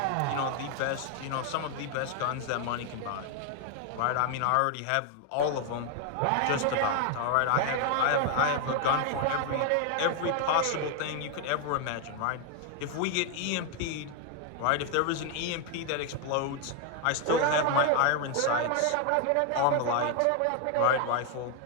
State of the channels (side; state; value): both; different; correlation 0.01